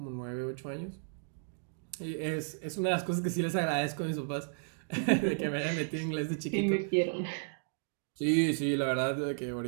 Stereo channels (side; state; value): left; silent; digital silence